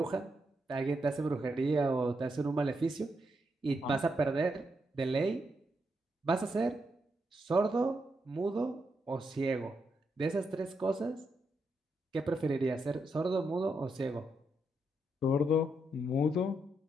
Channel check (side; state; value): both; normal; correlation 0.81